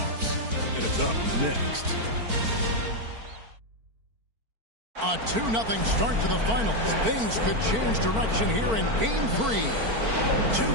and it's up next. A 2-0 start to the finals. Things could change direction here in Game 3.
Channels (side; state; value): left; late; 4.5 ms